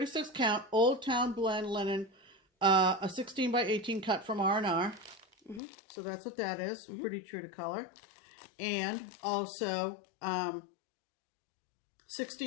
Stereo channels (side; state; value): right; drops out; at 5.6 s